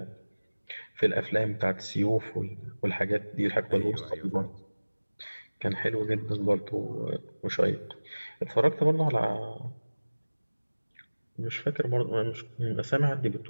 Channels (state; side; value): inverted; both; correlation -1.00